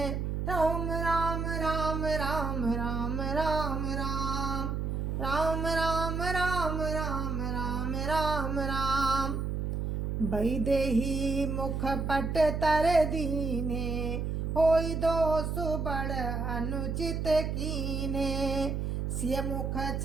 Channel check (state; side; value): noise; right; hum, 1 dB below the sound